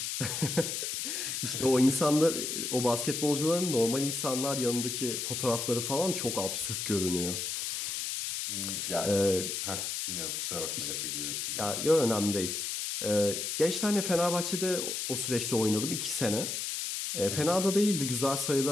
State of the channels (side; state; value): left; noise; hiss, 3 dB below the sound